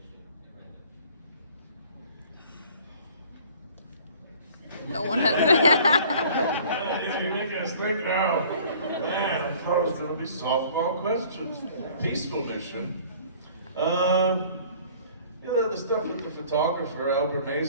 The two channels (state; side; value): inverted; both; correlation -0.51